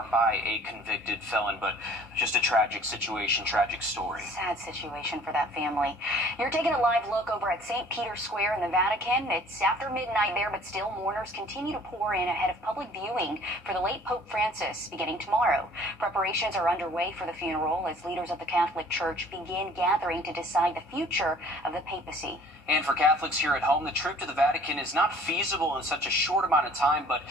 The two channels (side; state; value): both; normal; correlation 0.53